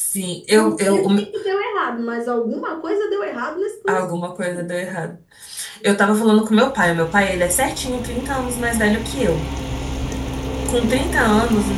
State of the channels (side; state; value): both; identical; correlation 1.00